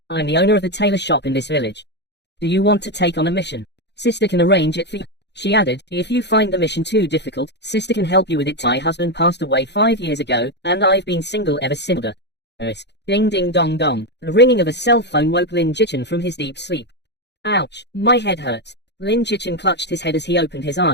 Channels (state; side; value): late; right; 0.50 ms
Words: I'm the owner of the tailor shop in this village. Do you want to take on a mission? Sister can arrange it for you. She added, if you find the mission too difficult, sister can help you with it. My husband passed away 5 years ago, and I've been single ever since. Ding ding dong dong. The ringing of a cell phone woke Lin Jichin from his deep sleep. Ouch, my head hurts. Lin Jichin clutched his head as he opened his